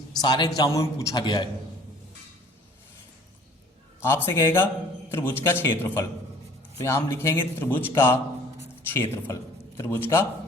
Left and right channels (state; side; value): normal; both; correlation 0.53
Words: सारे एग्जामों में पूछा गया है। आपसे कहेगा त्रिभुज का क्षेत्रफल, तो यहां हम लिखेंगे त्रिभुज का क्षेत्रफल, त्रिभुज का